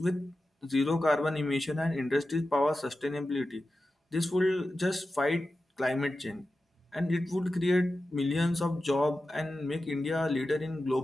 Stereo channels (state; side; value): normal; both; correlation 0.93